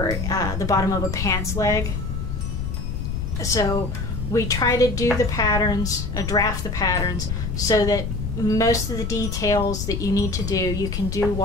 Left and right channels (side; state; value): left; noise; rumble, 3 dB below the sound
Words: the bottom of a pants leg. So we try to do the patterns, draft the patterns, so that most of the details that you need to do, you can do